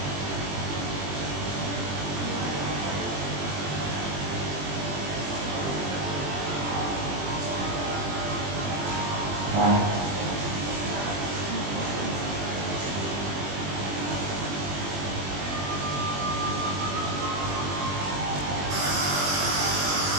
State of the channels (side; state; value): left; late; 21 ms